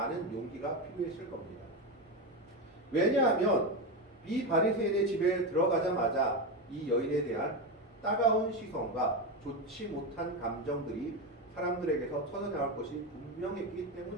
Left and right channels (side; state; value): both; normal; correlation 0.14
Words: 용기가 필요했을 겁니다. 왜냐하면 이 바리새인의 집에 들어가자마자 이 여인에 대한 따가운 시선과 좋지 못한 감정들이 사람들에게서 터져나올 것이 분명했기